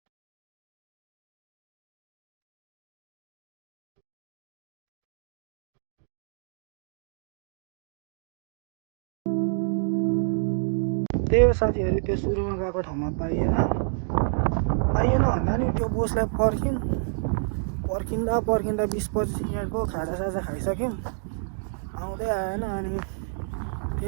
त्यही हो साथीहरू त्यो सुरुमा गएको ठाउँमा पाइएन भन्दा नि त्यो बोसलाई पर्खिँदा 20-25 मिनटको खाजासाजा खाइसक्यौँ आउँदै आएन अनि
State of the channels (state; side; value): silent; left; digital silence